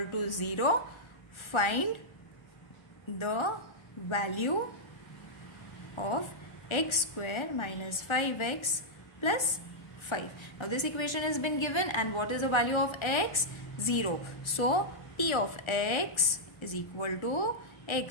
to 0, find the value of x square minus 5x plus 5. Now this equation has been given, and what is the value of x? 0. So p of x is equal to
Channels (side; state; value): right; late; 1.3 ms